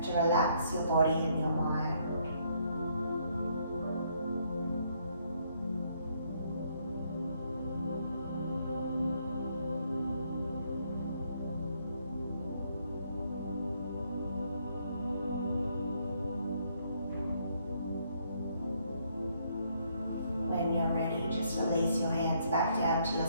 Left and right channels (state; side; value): inverted; both; correlation -0.70